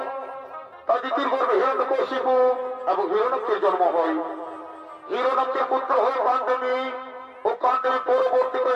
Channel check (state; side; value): identical; both; correlation 1.00